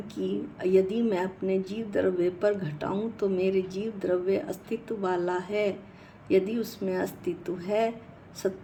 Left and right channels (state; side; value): identical; both; correlation 1.00